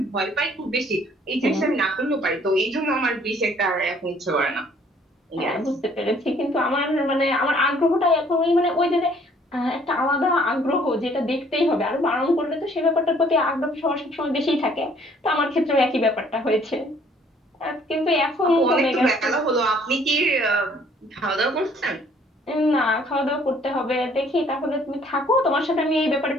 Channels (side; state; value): both; normal; correlation 0.60